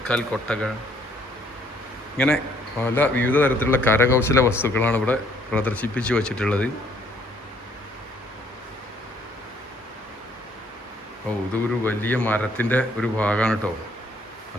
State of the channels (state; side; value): normal; both; correlation 0.64